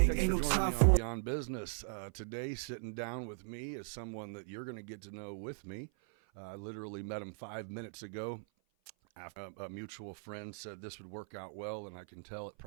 ain't no time for Beyond Business. Today, sitting down with me is someone that you're going to get to know with me. I literally met him 5 minutes ago. After a mutual friend said this would work out well, and I can tell it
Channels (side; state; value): left; silent; 52 dB below the other